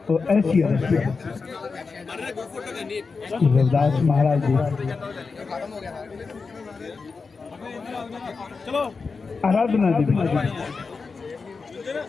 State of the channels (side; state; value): right; quieter; 4.6 dB